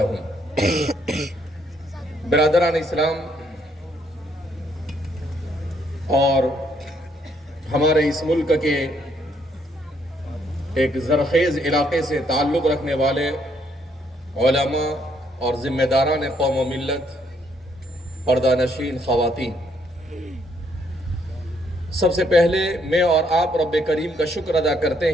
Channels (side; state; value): both; normal; correlation 0.70